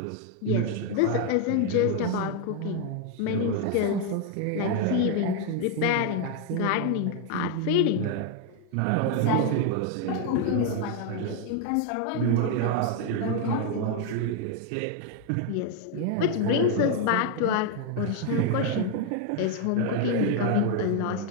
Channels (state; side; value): different; both; correlation 0.01